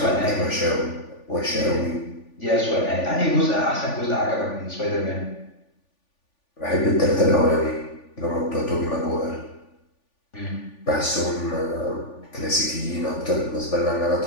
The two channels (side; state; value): right; late; 3.5 ms